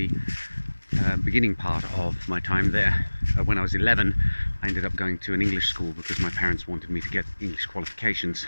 beginning part of my time there. When I was 11, I ended up going to an English school because my parents wanted me to get English qualifications.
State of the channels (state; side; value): inverted; both; correlation -1.00